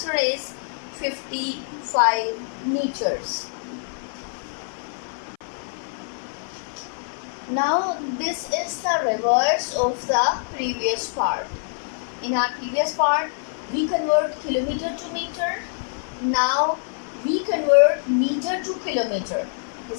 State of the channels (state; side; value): silent; right; 56 dB below the other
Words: is 55 meters. Now this is the reverse of the previous part. In our previous part, we convert kilometer to meter. Now we convert meter to kilometer.